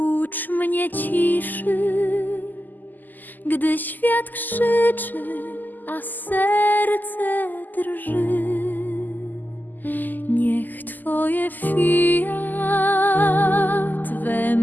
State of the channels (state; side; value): late; right; 0.086 ms